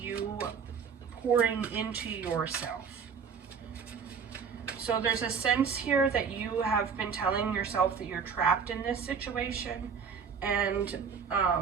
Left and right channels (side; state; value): left; quieter; 6.3 dB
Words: pouring into yourself. So there's a sense here that you have been telling yourself that you're trapped in this situation, and